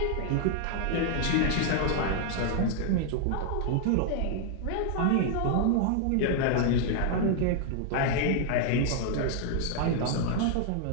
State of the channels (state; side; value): different; both; correlation 0.00